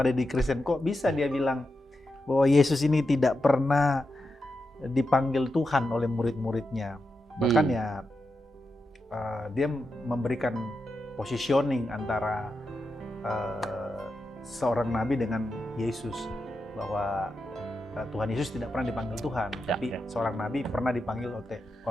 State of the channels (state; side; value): normal; both; correlation 0.88